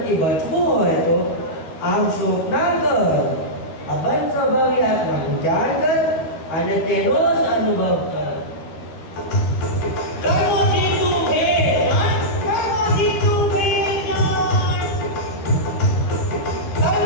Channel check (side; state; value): right; late; 13 ms